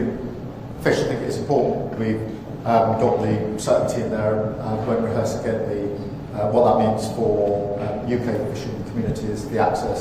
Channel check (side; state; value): both; identical; correlation 1.00